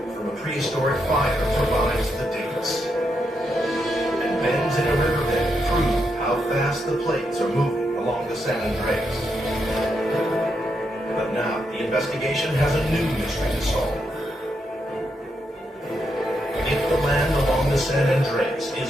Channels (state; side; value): normal; both; correlation 0.82